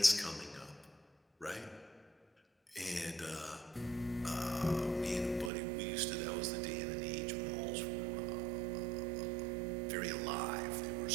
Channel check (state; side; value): drops out; left; at 5.5 s